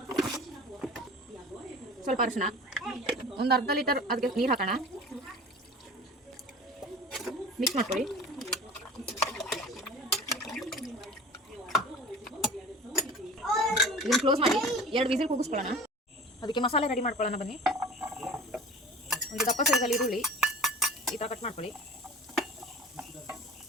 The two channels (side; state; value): both; normal; correlation 0.40